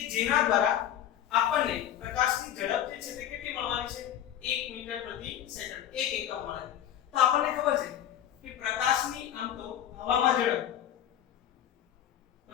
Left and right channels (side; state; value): right; quieter; 10.8 dB